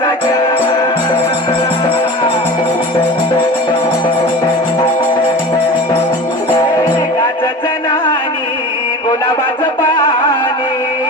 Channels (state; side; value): normal; both; correlation 0.35